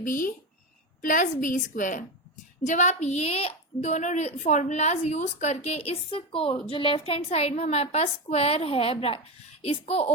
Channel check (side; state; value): both; normal; correlation 0.16